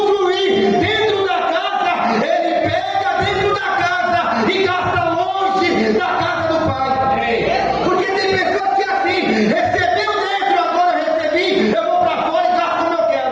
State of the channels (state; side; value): identical; both; correlation 1.00